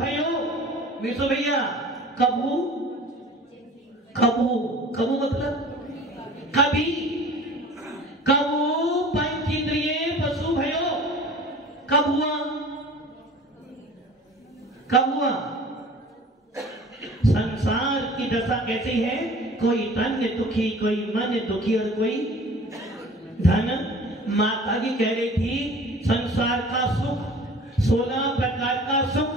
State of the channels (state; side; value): normal; both; correlation 0.44